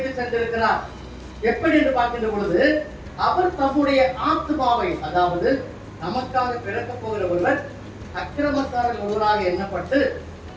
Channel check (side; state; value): both; identical; correlation 1.00